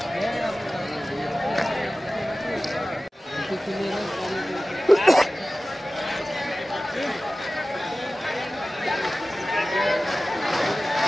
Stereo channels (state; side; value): normal; both; correlation 0.96